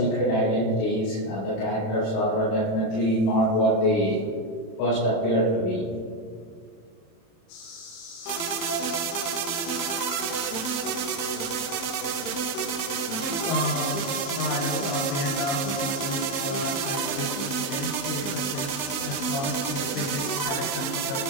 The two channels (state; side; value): late; right; 35 ms